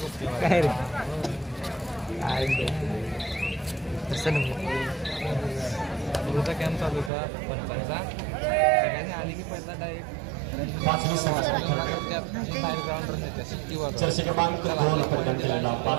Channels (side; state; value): left; drops out; at 7.1 s